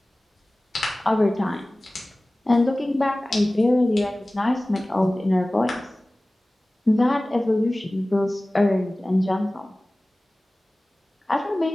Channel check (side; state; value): both; normal; correlation 0.98